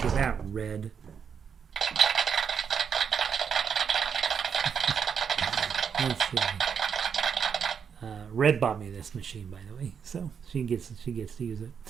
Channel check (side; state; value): left; quieter; 7.0 dB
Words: of that, Red. Let's see. Red bought me this machine, by the way, so she gets to use it.